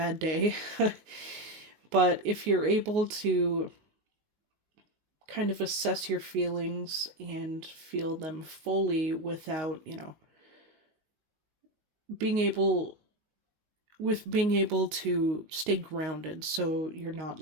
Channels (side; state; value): left; late; 19 ms